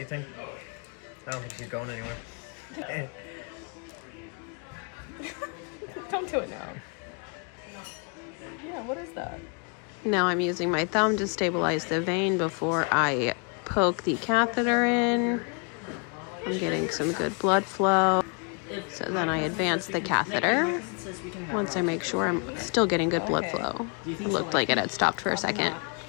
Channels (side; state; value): right; quieter; 37.1 dB